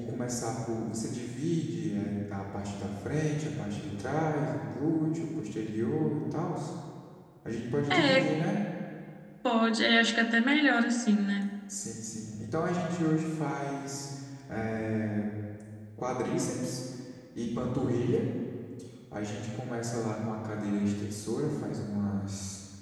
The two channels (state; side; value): identical; both; correlation 1.00